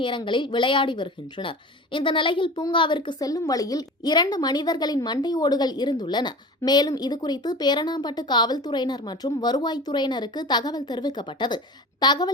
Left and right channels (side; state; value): both; normal; correlation 0.34